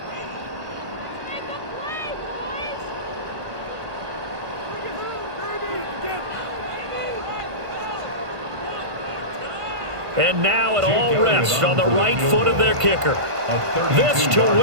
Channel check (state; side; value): late; left; 1.5 ms